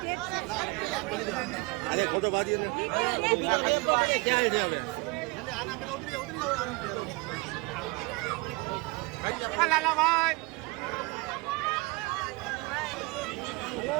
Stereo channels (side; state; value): left; quieter; 26.0 dB